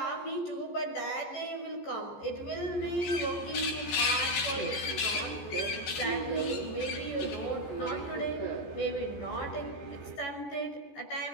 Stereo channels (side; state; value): right; late; 14 ms